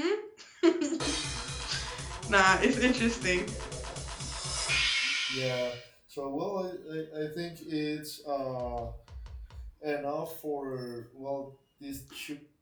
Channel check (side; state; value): both; identical; correlation 1.00